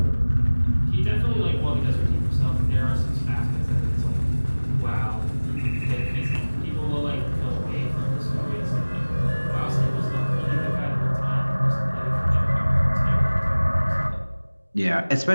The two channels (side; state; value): both; inverted; correlation -1.00